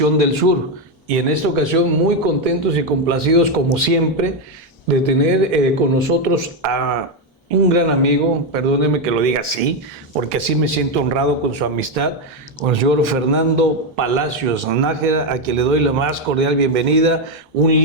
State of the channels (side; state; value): both; normal; correlation 0.06